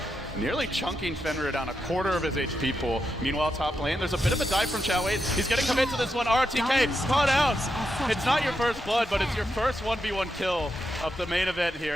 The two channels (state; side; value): normal; both; correlation 0.85